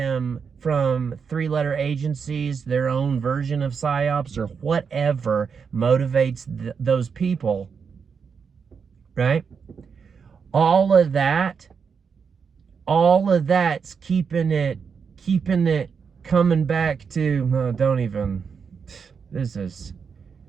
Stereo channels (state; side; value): quieter; left; 6.1 dB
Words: from three-letter agencies, their own version of psyops, or whatever motivates those people, right? All of that's keeping it coming back to, don't even, this is